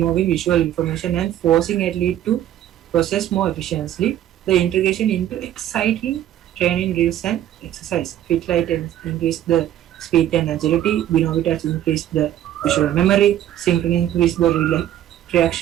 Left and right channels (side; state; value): left; quieter; 11.9 dB